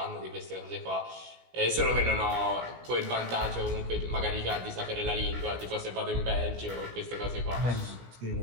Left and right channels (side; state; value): left; late; 17 ms